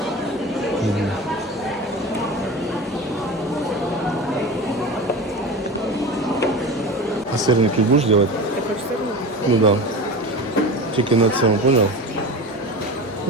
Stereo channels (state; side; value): normal; both; correlation 0.31